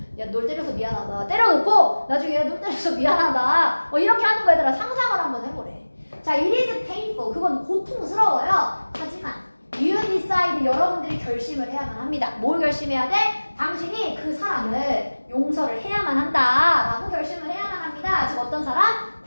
야, 널 때려서 미안하다. 때려놓고 나중에 야, 널 때려서 미안하다. 이렇게 하는 거 얘들아 상상을 한번 해보래. 자, it is painful. 그건 고통스러워요. 하지만 you decide, 여러분들이 결심을 해야만 합니다. 뭘 결심해야 돼? 당신이 그 사람을 용서를 해야만 한다 라고 결심을 해야만 합니다. 즉 어떤 사람?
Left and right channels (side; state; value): both; inverted; correlation -1.00